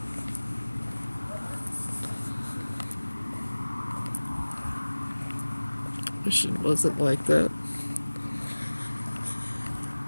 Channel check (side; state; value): both; inverted; correlation -1.00